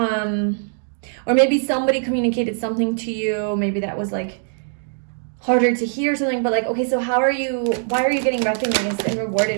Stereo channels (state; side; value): silent; left; digital silence